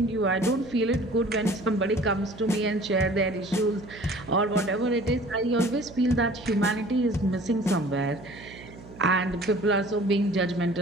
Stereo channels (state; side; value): noise; right; hum, 18 dB below the sound